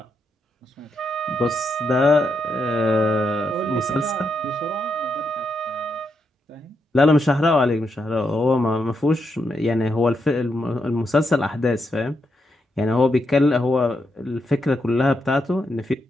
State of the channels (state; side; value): normal; both; correlation 0.82